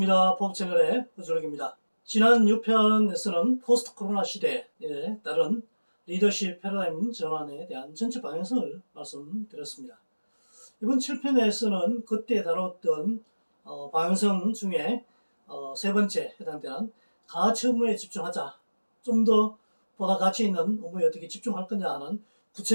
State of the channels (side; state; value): both; inverted; correlation -1.00